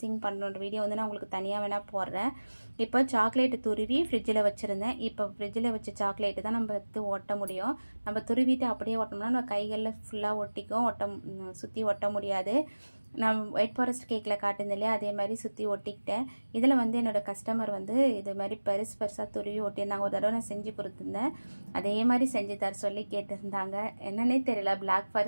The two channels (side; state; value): both; inverted; correlation -1.00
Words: பண்ணுற வீடியோ வந்து நான் உங்களுக்கு தனியாக வேணால் போடுறேன். இப்போ சாக்லேட்டு துருவி ஃப்ரிட்ஜில் வச்சுருந்தேன். இப்போ ஃப்ரிட்ஜில் வச்ச சாக்லேட்டு தான் நம்ம எடுத்து ஒட்ட முடியும். நம்ம துருவிட்டு அப்படியே ஒட்டோம்னா நம்ம கைகளில் ஃபுல்லாக ஒட்டிக்கும், சுற்றி ஒட்ட முடியாது. நான் ஒயிட் ஃபாரஸ்ட் கேக்கில் காட்டுந்தேன் இல்லையா, அதே மாதிரி சுற்றி ஒட்டிக்கிட்டேன். இதில் வந்து என்னோடய கஸ்டமர் வந்து இது மாதிரி பெருசாக துருவி ஒட்டியிருந்தாங்க. ஒரு தடவை நான் செஞ்சு கொடுத்துருந்தேன், அதே மாதிரி செஞ்சு தர சொல்லி கேட்டிருந்தாங்க. என்னன்னே தெரியல, பிளாக்